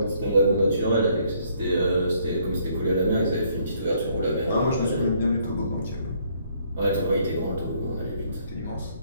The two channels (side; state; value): both; inverted; correlation -0.66